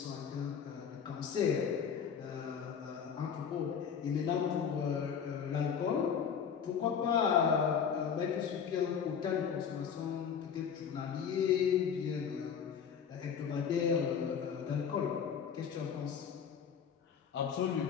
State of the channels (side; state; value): right; quieter; 7.3 dB